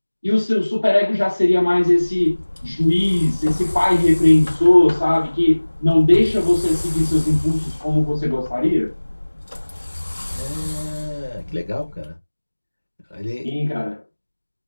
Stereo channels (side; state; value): both; inverted; correlation -1.00